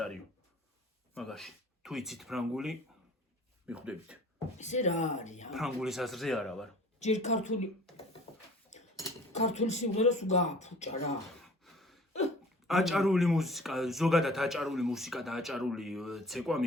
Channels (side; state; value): both; normal; correlation 0.47